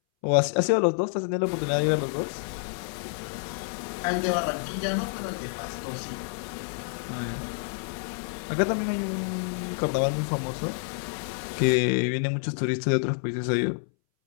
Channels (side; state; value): right; silent; 59 dB below the other